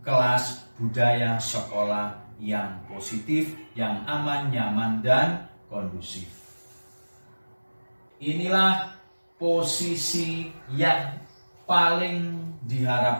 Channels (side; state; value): both; inverted; correlation -1.00